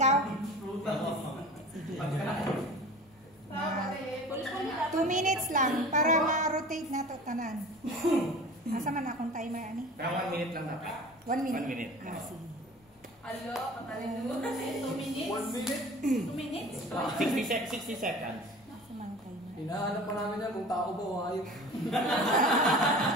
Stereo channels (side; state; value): both; normal; correlation 0.40